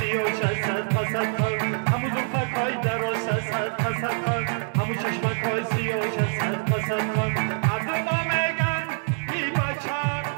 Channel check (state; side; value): silent; left; 57 dB below the other